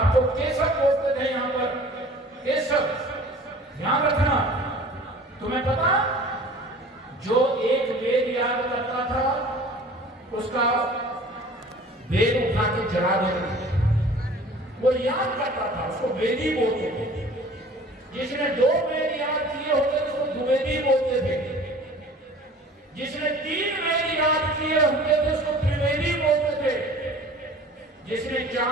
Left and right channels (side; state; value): both; normal; correlation 0.46